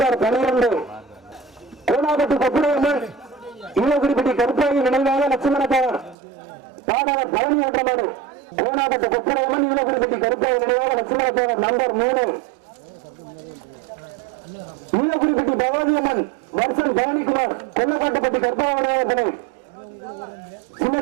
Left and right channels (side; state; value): left; drops out; at 6.2 s